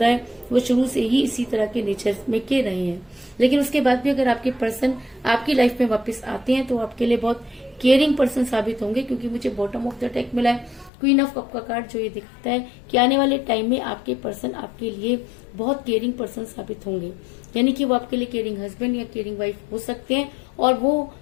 है। वो शुरू से ही इसी तरह के नेचर में के रहे हैं। लेकिन उसके बाद भी अगर आपके पर्सन आपकी लाइफ में वापस आते हैं तो आपके लिए बहुत केयरिंग पर्सन साबित होंगे। क्योंकि मुझे बॉटम ऑफ द डेक मिला है क्वीन ऑफ कप का कार्ड, जो ये दिखाता है कि आने वाले टाइम में आपके पर्सन आपके लिए बहुत केयरिंग पर्सन साबित होंगे। यानी कि वो आपके लिए केयरिंग हस्बैंड या केयरिंग वाइफ हो सकते हैं, और वो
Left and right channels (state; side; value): drops out; right; at 10.9 s